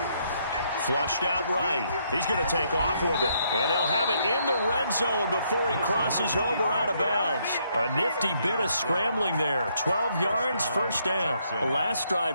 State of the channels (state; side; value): inverted; both; correlation -0.72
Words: Flushed out right. He's going to take off with it. And they'll have it in the red zone before he crosses over out of bounds. A nifty bit of scrambling there. 12 yards, first down. The last